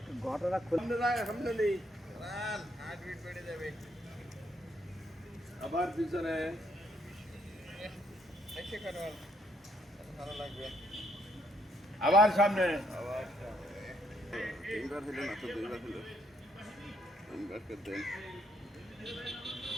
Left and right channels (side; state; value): both; normal; correlation 0.72